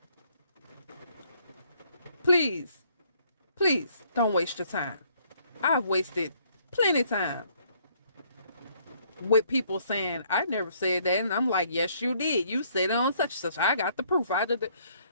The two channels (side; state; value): both; inverted; correlation -0.65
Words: Please, don't waste your time. I've wasted plenty of time. with people saying, I never said that. And I'm like, yes, you did. You said it on such and such. I got the proof. I did it.